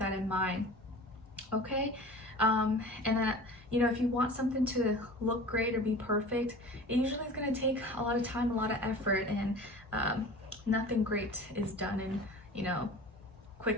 in mind. Okay. And then, you know, if you want something to look great or be perfect, it usually is going to take a lot of time, a lot of effort, and nothing great is done in, you know,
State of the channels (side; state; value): both; normal; correlation 0.39